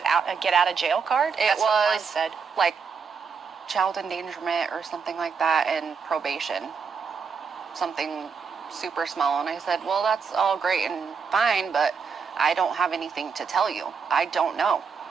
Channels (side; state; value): left; quieter; 5.8 dB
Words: a get out of jail card? It was like child endangerment or something like that, and probation, something super small. And I said, well, that's all great and fine, but I don't have anything to tell you. I don't know.